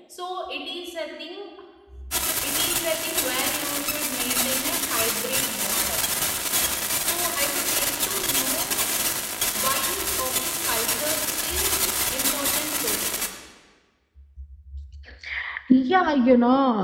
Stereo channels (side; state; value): both; identical; correlation 1.00